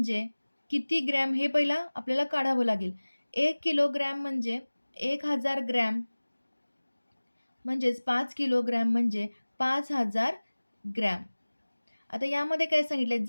किती ग्रॅम हे पहिला आपल्याला काढावं लागेल. 1 किलोग्रॅम म्हणजे 1000 ग्रॅम, म्हणजेच 5 किलोग्रॅम म्हणजे 5000 ग्रॅम. आता यामध्ये काय सांगितले?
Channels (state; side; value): inverted; both; correlation -1.00